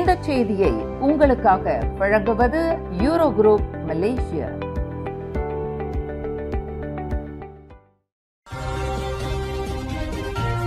செய்தியை உங்களுக்காக வழங்குவது யூரோ குரூப் மலேசியா.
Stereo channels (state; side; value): identical; both; correlation 1.00